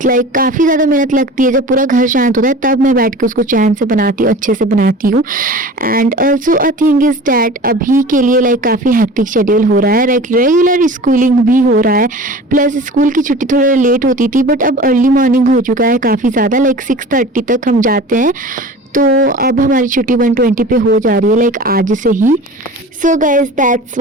Like काफ़ी ज़्यादा मेहनत लगती है, जब पूरा घर शांत होता है तब मैं बैठ के उसको चैन से बनाती हूँ, अच्छे से बनाती हूँ। And also a thing is that अभी के लिए लाइक काफ़ी हेक्टिक शेड्यूल हो रहा है, लाइक रेगुलर स्कूलिंग भी हो रहा है, प्लस स्कूल की छुट्टी थोड़ा लेट होती थी, बट अब अर्ली मॉर्निंग हो चुका है काफ़ी ज़्यादा, लाइक 6:30 तक हम जाते हैं। तो अब हमारी छुट्टी 1:20 पे हो जा रही है, लाइक आज से ही। So guys, that's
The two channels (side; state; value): both; normal; correlation 0.39